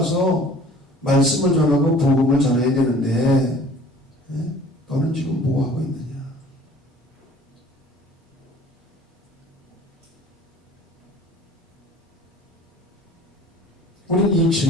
말씀을 전하고 복음을 전해야 되는데 너는 지금 뭐 하고 있느냐. 우리는 이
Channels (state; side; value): normal; both; correlation 0.49